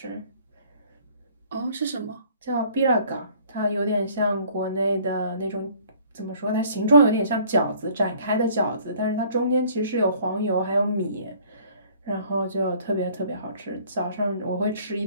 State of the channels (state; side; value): inverted; both; correlation -0.56